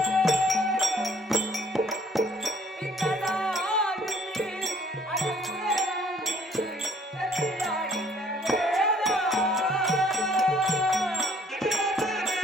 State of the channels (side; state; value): both; normal; correlation 0.59